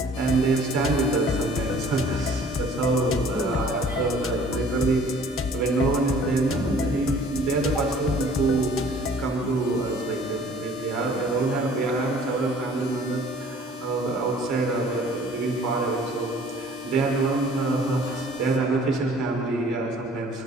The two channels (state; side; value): normal; both; correlation 0.53